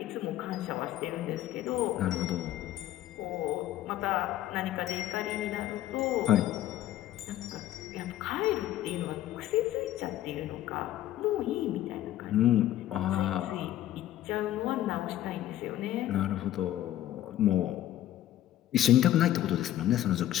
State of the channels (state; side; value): quieter; right; 13.1 dB